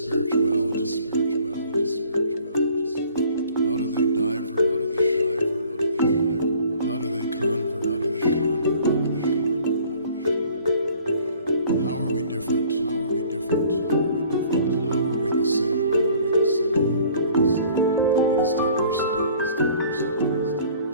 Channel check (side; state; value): both; inverted; correlation -0.54